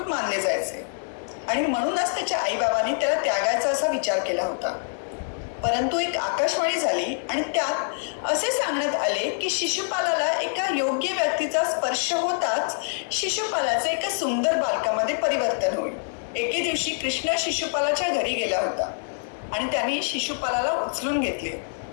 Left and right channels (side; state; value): right; silent; digital silence